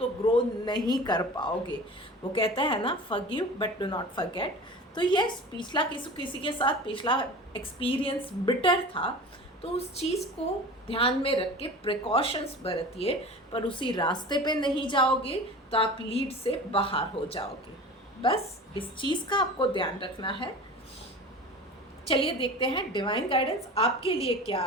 ग्रो नहीं कर पाओगे। वो कहता है ना, forgive but do not forget. तो यस, पिछला किसी के साथ पिछला एक्सपीरियंस बिटर था, तो उस चीज़ को ध्यान में रख के प्रिकॉशंस बरतिए, पर उसी रास्ते पे नहीं जाओगे तो आप लीड से बाहर हो जाओगे। बस इस चीज़ का आपको ध्यान रखना है। चलिए देखते हैं डिवाइन गाइडेंस आपके लिए क्या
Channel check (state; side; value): normal; both; correlation 0.36